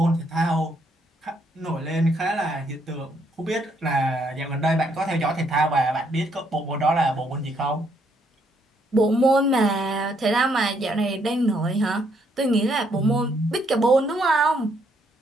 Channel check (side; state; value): both; normal; correlation 0.72